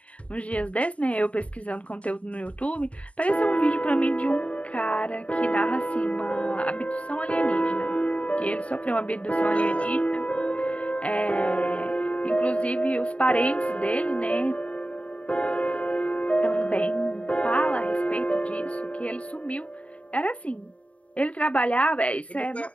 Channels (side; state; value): right; late; 0.065 ms